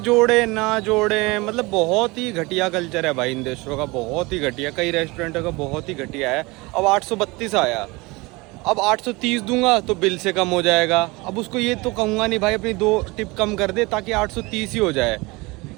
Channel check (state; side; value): quieter; left; 24.1 dB